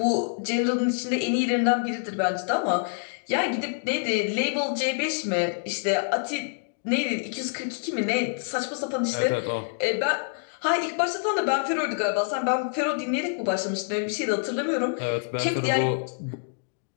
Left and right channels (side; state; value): right; silent; digital silence